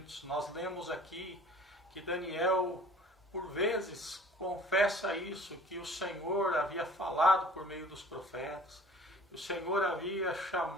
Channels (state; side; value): normal; both; correlation 0.49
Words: Nós lemos aqui que Daniel, por vezes, confessa isso, que o Senhor havia falado por meio dos profetas, que o Senhor havia